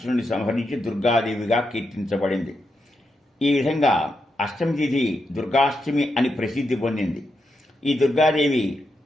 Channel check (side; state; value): both; normal; correlation 0.84